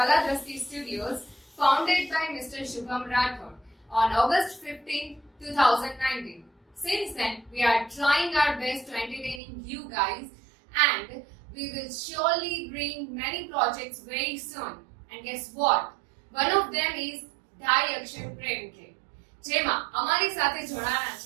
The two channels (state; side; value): drops out; left; at 9.4 s